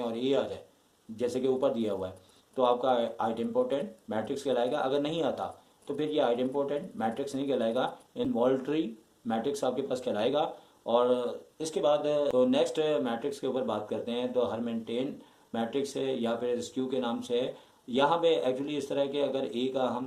और ए आ जाए जैसे कि ऊपर दिया हुआ है तो आपका आइडेम्पोटेंट मैट्रिक्स कहलाएगा। अगर नहीं आता तो फिर ये आइडेम्पोटेंट मैट्रिक्स नहीं कहलाएगा, इनवॉल्यूटरी मैट्रिक्स आपके पास कहलाएगा। और इसके बाद तो नेक्स्ट मैट्रिक्स के ऊपर बात करते हैं तो हर्मिटियन मैट्रिक्स है या फिर स्क्यू के नाम से है। यहाँ पे एक्चुअली इस तरह के अगर ए का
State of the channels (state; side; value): identical; both; correlation 1.00